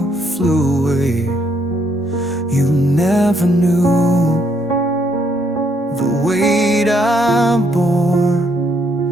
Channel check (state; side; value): normal; both; correlation 0.72